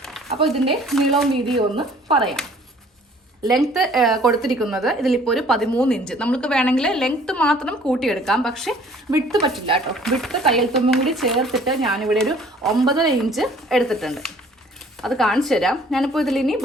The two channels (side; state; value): both; normal; correlation 0.55